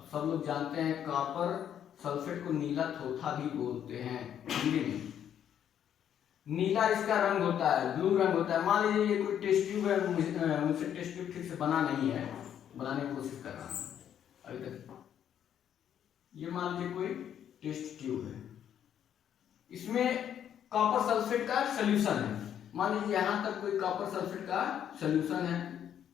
सब लोग जानते हैं कॉपर सल्फेट को नीला थोथा भी बोलते हैं हिंदी में। नीला इसका रंग होता है, ब्लू रंग होता है। मान लीजिए ये कोई टेस्ट ट्यूब है, मुझसे टेस्ट ट्यूब ठीक से बना नहीं है, बनाने की कोशिश कर रहा हूं अभी तक। ये मान लीजिए कोई टेस्ट ट्यूब है, इसमें कॉपर सल्फेट का सोल्यूशन है। मान लीजिए यहां तक कोई कॉपर सल्फेट का सोल्यूशन है,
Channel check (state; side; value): quieter; right; 9.6 dB